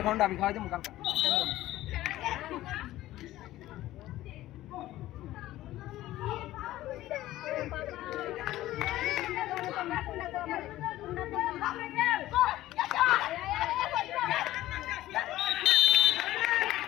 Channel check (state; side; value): quieter; right; 15.3 dB